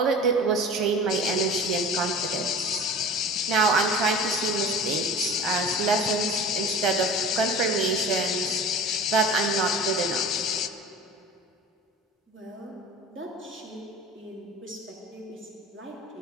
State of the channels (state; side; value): normal; both; correlation 0.38